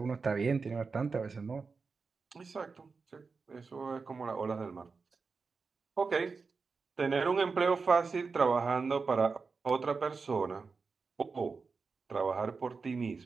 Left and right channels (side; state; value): left; quieter; 4.7 dB